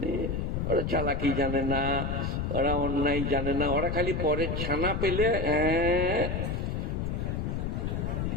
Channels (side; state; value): left; noise; rumble, 1 dB below the sound